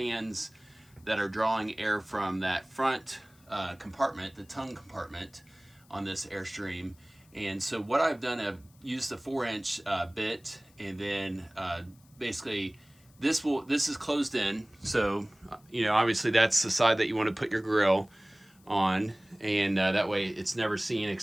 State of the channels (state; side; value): noise; left; hiss, 30 dB below the sound